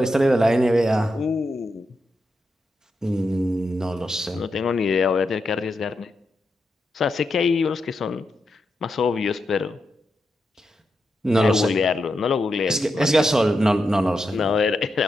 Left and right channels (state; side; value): normal; both; correlation 0.86